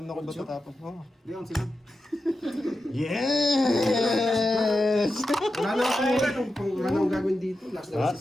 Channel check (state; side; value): normal; both; correlation 0.90